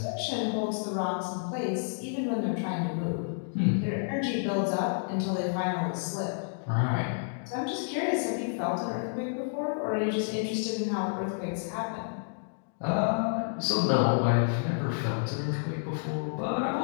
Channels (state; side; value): silent; right; digital silence